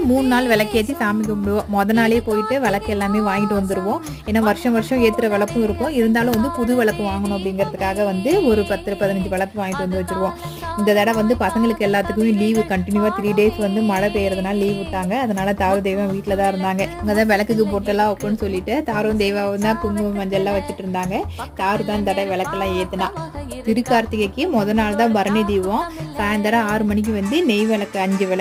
3 நாள் விளக்கேத்தி சாமி கும்பிடுவோம். நாளே போயிட்டு விளக்கு எல்லாமே வாங்கிட்டு வந்துருவோம். ஏன்னா வருஷம் வருஷம் ஏத்துற விளக்கும் இருக்கும். இருந்தாலும் வந்து புது விளக்கு வாங்கணும் அப்படிங்கிறதுக்காக வந்து ஒரு 10, 15 விளக்கு வாங்கிட்டு வந்து வச்சுருவோம். இந்த தடவை வந்து பசங்களுக்கு எல்லாத்துக்குமே லீவு கண்டினியூவா 3 டேஸ் வந்து மழை பெய்யறதுனால லீவ் விட்டாங்க. அதனால தாரு தெய்வம் வீட்டில தான் இருந்தாங்க. இங்க தான் விளக்குக்கு பொட்டெல்லாம் வைப்போம்னு சொல்லிட்டு தாரும் தெய்வாவும் தான் குங்குமம் மஞ்சள்லாம் வச்சுட்டு இருந்தாங்க. தாரு தான் இந்த தடவை விளக்கெல்லாம் ஏத்துனா. திருக்கார்த்திகைக்கு நாள் தான் பரணி தீபம். சாயந்தரம் 6 மணிக்கு வந்து நெய் விளக்கு 5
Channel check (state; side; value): identical; both; correlation 1.00